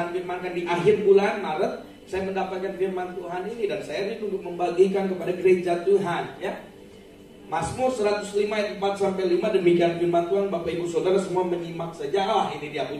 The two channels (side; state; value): both; identical; correlation 1.00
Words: firmankan di akhir bulan Maret, saya mendapatkan firman Tuhan ini dan saya rindu untuk membagikan kepada gereja Tuhan, ya. Mazmur 105 ayat 4 sampai 5, demikian firman Tuhan. Bapak Ibu Saudara semua menyimak saja. Ini dia,